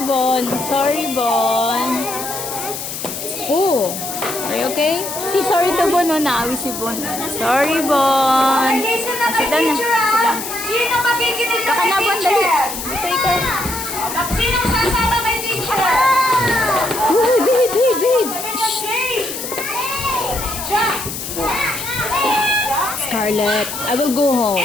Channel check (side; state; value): left; noise; hiss, 7 dB below the sound